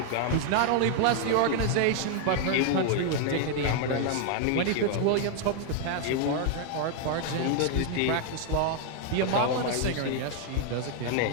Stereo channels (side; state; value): both; different; correlation 0.00